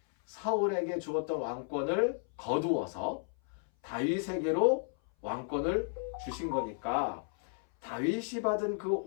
사울에게 주었던 왕권을 거두어서 다윗에게로 왕권을 주신 거니까 다윗이 받은 그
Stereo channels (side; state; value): right; silent; 56 dB below the other